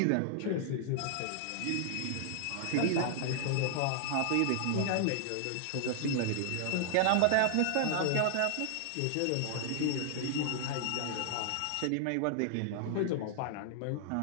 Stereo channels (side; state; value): both; different; correlation 0.00